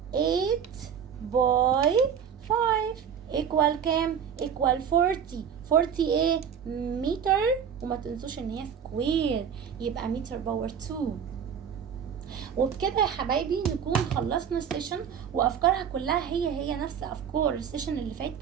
8 باي 5 ايكوال كام؟ ايكوال 40. 40 ايه؟ متر، وما تنسوش ان هي سكوير، يبقى متر باور 2. وبكده يا حبايبي نكون خلصنا السيشن، وافكارها كلها هي نفس افكار السيشن اللي فات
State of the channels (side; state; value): left; quieter; 7.8 dB